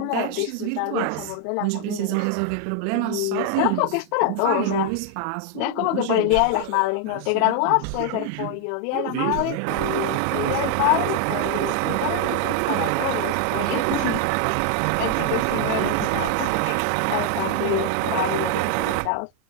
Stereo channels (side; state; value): both; different; correlation 0.00